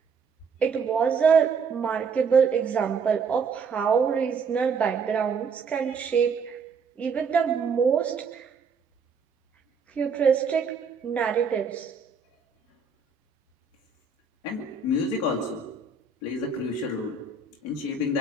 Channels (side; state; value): left; quieter; 5.1 dB